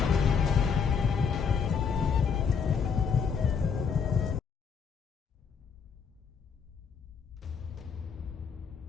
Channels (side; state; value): right; quieter; 6.2 dB